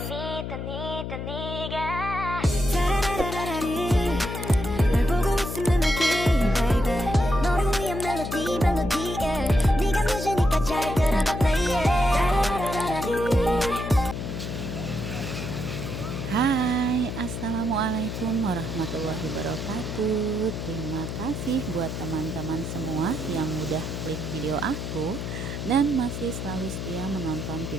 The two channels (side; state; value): left; noise; hum, 5 dB below the sound